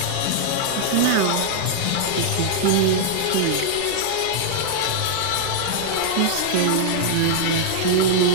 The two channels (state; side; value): different; both; correlation -0.01